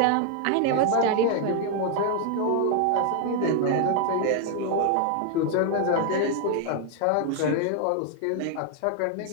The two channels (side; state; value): both; different; correlation 0.00